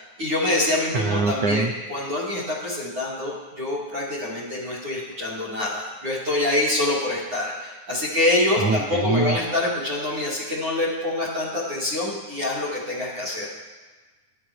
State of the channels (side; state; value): left; late; 9.6 ms